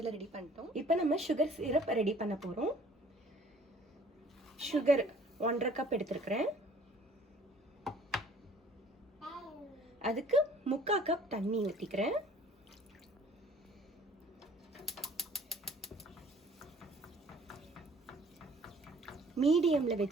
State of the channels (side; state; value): both; normal; correlation 0.53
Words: ரெடி பண்ணிட்டோம். இப்போ நம்ம சுகர் சிரப் ரெடி பண்ண போகிறோம். சுகர் 1/2 கப் எடுத்துருக்கிறேன். அதுக்கு 3/4 கப் தண்ணி ஊற்றிக்கிறேன். மீடியமில்